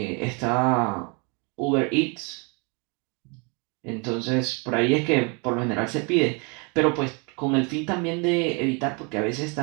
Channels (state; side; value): quieter; left; 32.5 dB